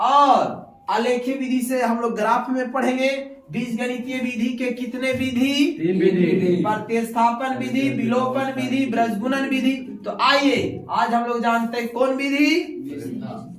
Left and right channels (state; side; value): identical; both; correlation 1.00